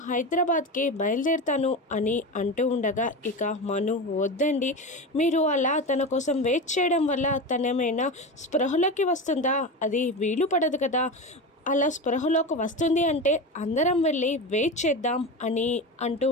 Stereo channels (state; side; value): normal; both; correlation 0.23